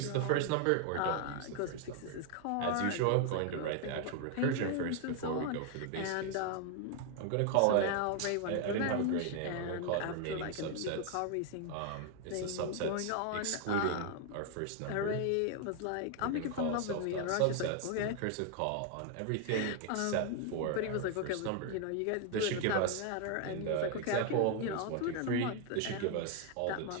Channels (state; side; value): different; both; correlation 0.00